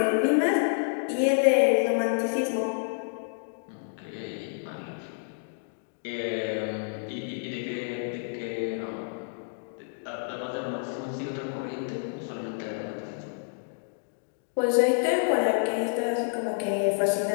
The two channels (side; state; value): right; silent; digital silence